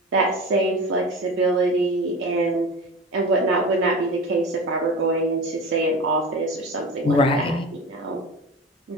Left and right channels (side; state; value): both; normal; correlation 0.31